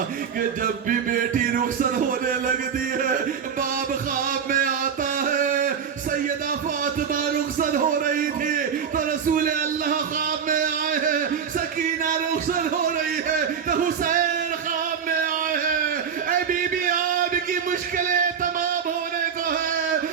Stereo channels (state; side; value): quieter; left; 7.1 dB